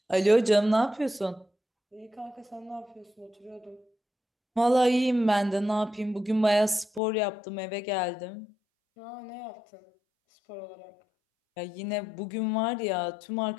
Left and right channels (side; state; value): right; drops out; at 7.0 s